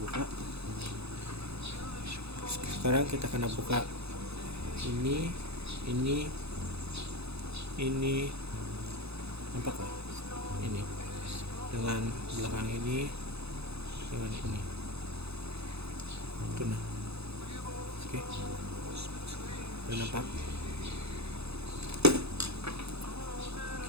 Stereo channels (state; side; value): late; left; 0.79 ms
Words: Sekarang kita akan buka ini, nampak kah? Ini dengan belakang ini, dengan ini. Itu nah. Oke. Udah nampak?